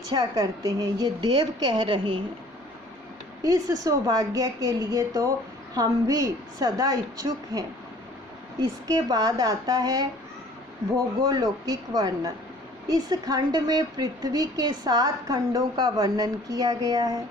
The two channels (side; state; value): both; normal; correlation 0.52